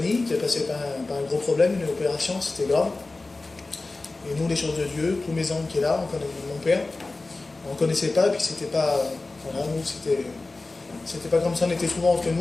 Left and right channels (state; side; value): quieter; right; 3.3 dB